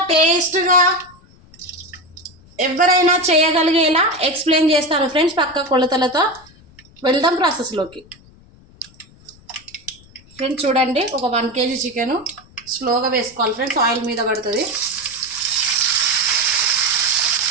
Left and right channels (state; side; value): noise; left; rumble, 26 dB below the sound